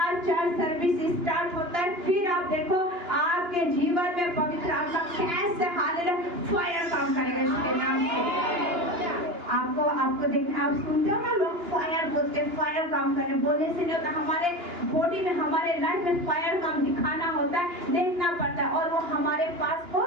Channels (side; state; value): left; late; 2.9 ms